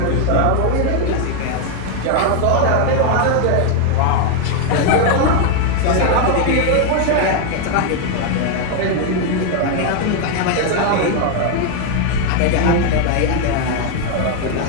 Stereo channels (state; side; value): different; both; correlation 0.01